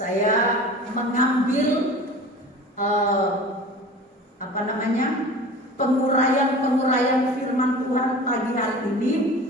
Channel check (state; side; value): normal; both; correlation 0.38